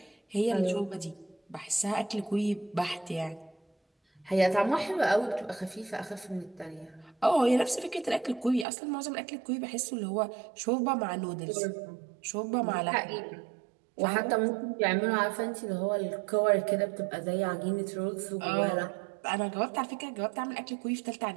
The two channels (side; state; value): left; drops out; at 8.7 s